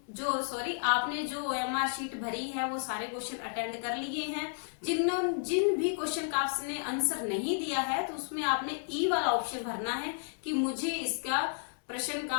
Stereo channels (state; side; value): silent; right; digital silence